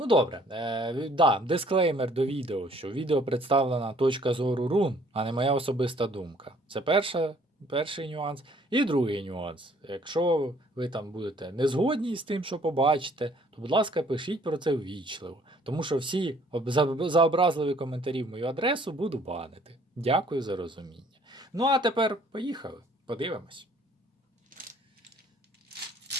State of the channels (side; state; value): both; normal; correlation 0.59